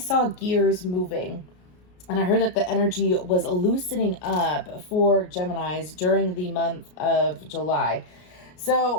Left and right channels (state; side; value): late; right; 33 ms